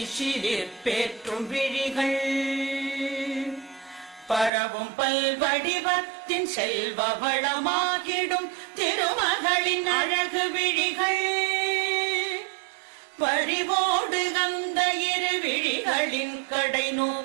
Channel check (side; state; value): left; drops out; at 4.5 s